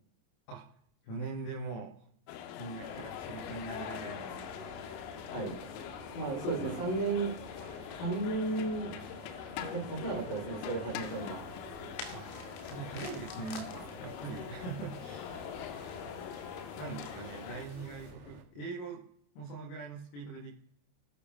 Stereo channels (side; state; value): right; late; 28 ms